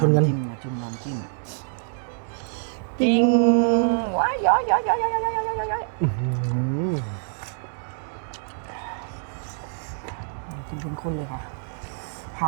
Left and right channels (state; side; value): silent; left; digital silence